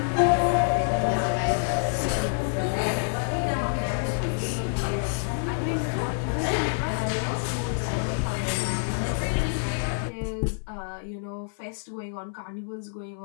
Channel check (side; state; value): right; silent; 60 dB below the other